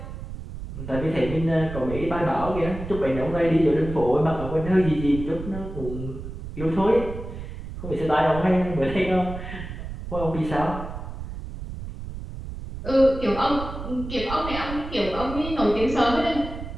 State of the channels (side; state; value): right; noise; rumble, 9 dB below the sound